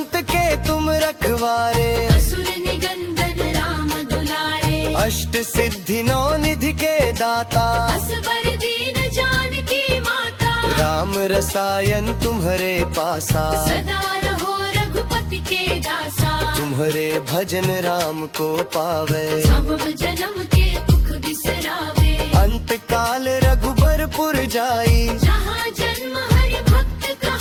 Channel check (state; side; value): identical; both; correlation 1.00